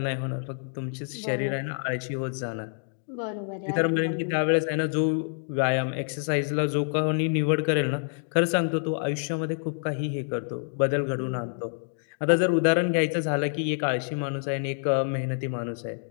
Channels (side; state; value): right; silent; digital silence